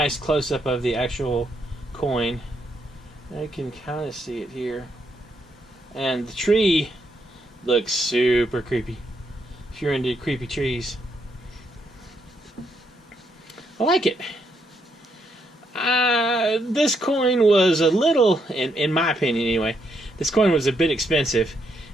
close-up of the actual coin. I can kind of see it here. And the tree looks super creepy, if you're into creepy trees. I like it. This coin was a little, in my opinion anyway, this coin was a bit expensive.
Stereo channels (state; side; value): normal; both; correlation 0.77